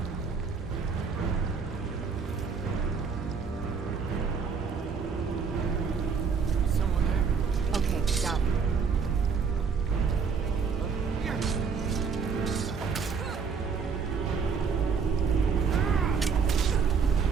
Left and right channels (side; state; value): left; quieter; 5.8 dB